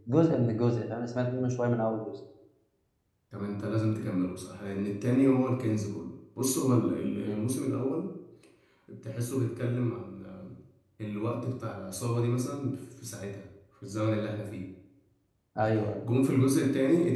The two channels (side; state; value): both; identical; correlation 1.00